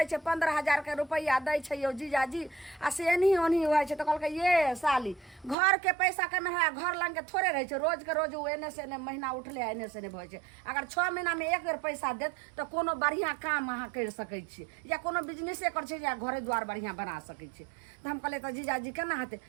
छै 15,000 के रुपया दै छै यो जीजाजी आ से एनही ओनही होइ छै तो कहलकै ये साली घर के पैसा के में घर लंग के थोड़े रहे छै, रोज के रोज उ एने से एने महीना उठले एने से एने भइ छै। अगर 6 महीना में एक बेर पैसा देत तो कोनो बढ़िया काम अहाँ कर सकै छी या कोनो बिजनेसे कर छै या घरे द्वार बढ़िया बना सकै छी। तो हम कहले तो जीजाजी केना हेतै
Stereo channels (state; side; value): drops out; left; at 5.6 s